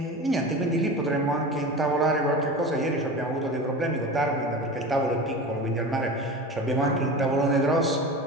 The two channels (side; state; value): both; normal; correlation 0.31